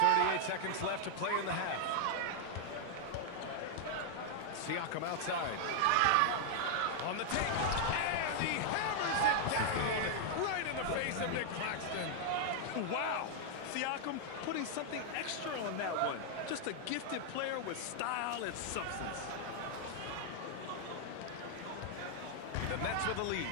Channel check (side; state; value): both; different; correlation -0.01